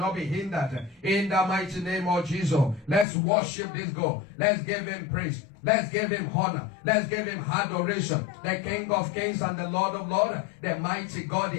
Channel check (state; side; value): drops out; right; at 3.1 s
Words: be hindered in the mighty name of Jesus. Let's worship this God. Let's give Him praise. Let's give Him honor. Let's give Him adoration. The King of Kings and the Lord of Lords, the mighty God,